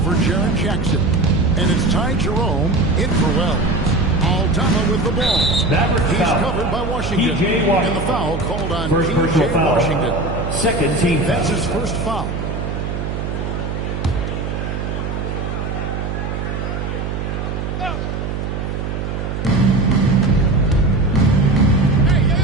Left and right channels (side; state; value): right; noise; hum, 4 dB below the sound